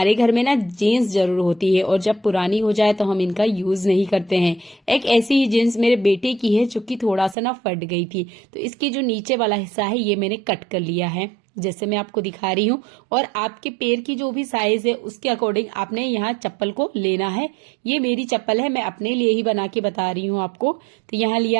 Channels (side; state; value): left; drops out; at 7.4 s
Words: घर में ना जीन्स जरूर होती है और जब पुरानी हो जाए तो हम इनका यूज नहीं करते हैं। एक ऐसी ही जीन्स मेरे बेटे की है जो कि थोड़ा सा ना फट गई थी, तो इसकी जो नीचे वाला हिस्सा है ये मैंने कट कर लिया है जैसे मैं आपको दिखा रही हूँ। और आपके पैर की जो भी साइज है उसके अकॉर्डिंग आपने यहाँ चप्पल को लेना है। ये मेरी चप्पल है, मैं अपने लिए ही बना के बता रही हूँ आपको। तो यहाँ